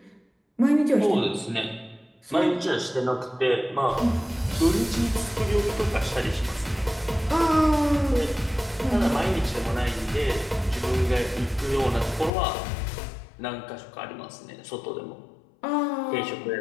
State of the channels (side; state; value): right; drops out; at 12.3 s